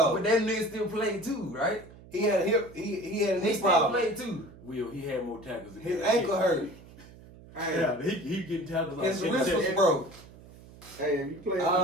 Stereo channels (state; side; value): noise; right; hum, 20 dB below the sound